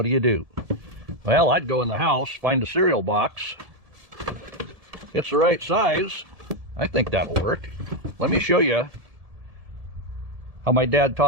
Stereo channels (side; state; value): left; late; 1.7 ms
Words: do? Well, I'd go in the house, find a cereal box. It's the right size. I think that'll work. Let me show you how my dad